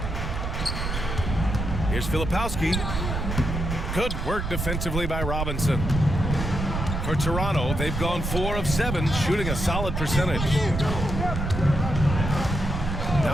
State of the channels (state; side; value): noise; right; rumble, 3 dB below the sound